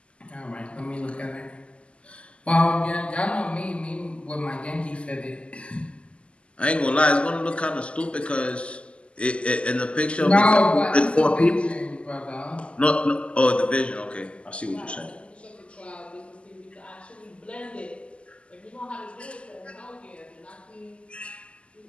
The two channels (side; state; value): right; late; 0.055 ms